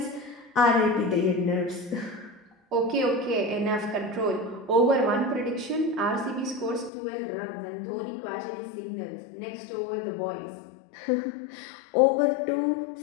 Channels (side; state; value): right; drops out; at 6.9 s